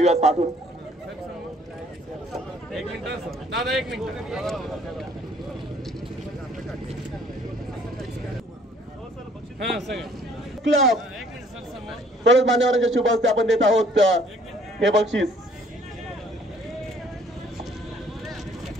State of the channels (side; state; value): both; normal; correlation 0.59